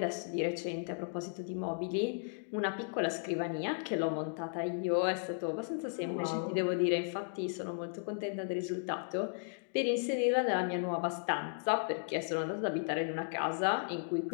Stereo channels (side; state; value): right; silent; digital silence